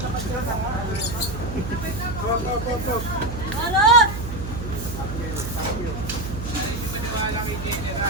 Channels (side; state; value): right; noise; hum, 7 dB below the sound